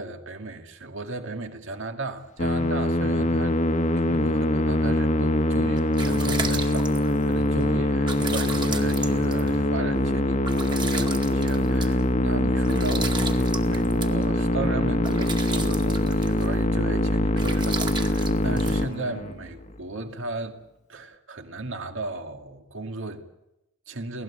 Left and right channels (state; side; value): normal; both; correlation 0.63